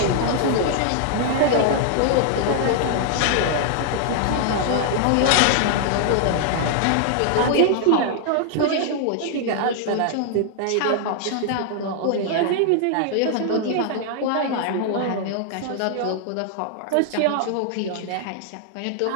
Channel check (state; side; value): different; both; correlation 0.00